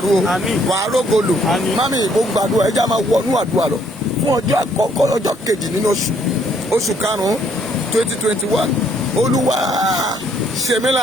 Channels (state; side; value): normal; both; correlation 0.66